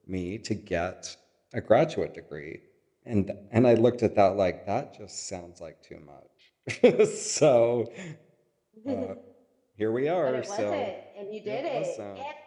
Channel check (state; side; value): identical; both; correlation 1.00